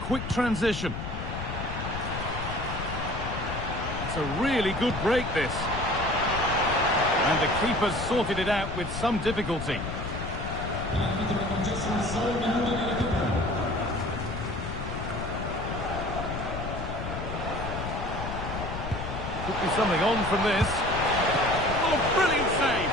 transition. It's a really good break, this. And the keeper's sorted it out with some difficulty. Could be something on from this. Oh, brilliant save!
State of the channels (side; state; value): left; noise; rumble, 6 dB below the sound